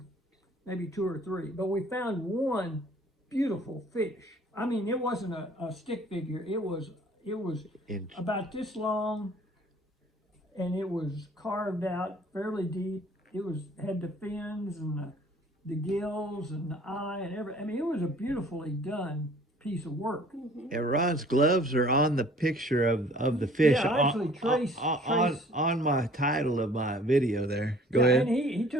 maybe 2 or 3, but we found one beautiful fish. I mean, it wasn't a stick figure. It was about this long, and it was carved out fairly deep. It had the fins and the gills and the eye and everything. I mean, it was a beautifully done piece of work. And Ron's gloves are on the picture of the fish. Yeah, I actually traced on my title of my video there. Go yeah, ahead. and he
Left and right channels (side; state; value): both; normal; correlation 0.53